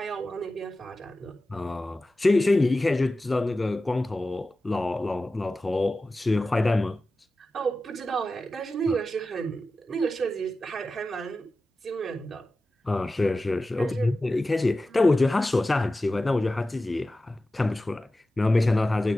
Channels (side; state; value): both; normal; correlation 0.94